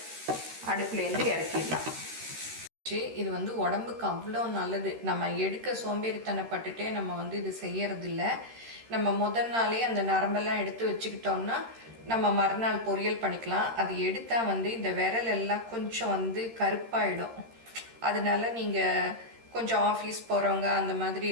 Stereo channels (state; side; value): late; left; 13 ms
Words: அடுப்புலேருந்து இறக்கிடலாம். இது உடம்புக்கு அவ்வளோ நல்லது. நம்ம எடுக்க சோம்பேறித்தனப்பட்டுட்டே நம்ம இது செய்யறதில்ல. நம்ம முதல் நாளே அந்த நரம்பெல்லாம் எடுத்து வச்சுக்கிட்டோம்னா நம்ம மறுநாள் பொரியல் பண்ணிக்கலாம். அது எடுத்தால் இந்த விரல் எல்லாம் கொஞ்சம் கருப்பாயிடும். அதனால நீங்கள் கொஞ்சம் ஆஃபீஸ் போகிறவங்க அந்த மாதிரி